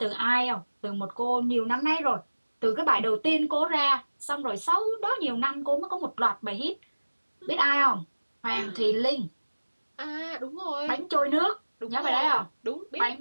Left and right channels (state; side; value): inverted; both; correlation -1.00